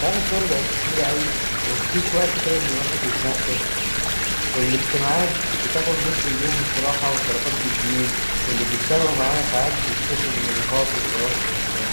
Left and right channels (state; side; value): inverted; both; correlation -1.00